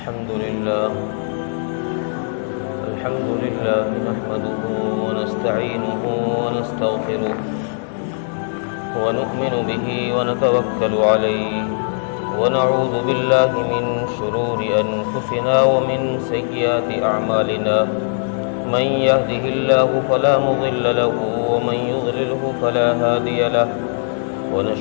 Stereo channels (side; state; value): right; silent; digital silence